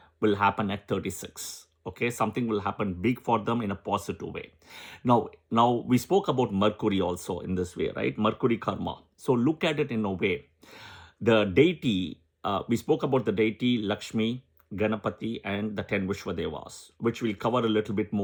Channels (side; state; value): both; identical; correlation 1.00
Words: will happen at 36. Okay, something will happen big for them in a positive way. Now we spoke about Mercury also in this way, right? Mercury karma. So look at it in a way. The deity, we spoke about the deity Lakshmi, Ganapati, and the 10 Vishwadevas, which we'll cover a little bit